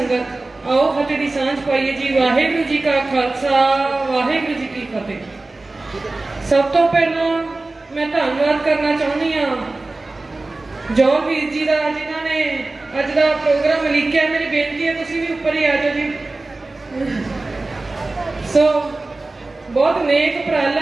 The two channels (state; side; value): quieter; left; 3.2 dB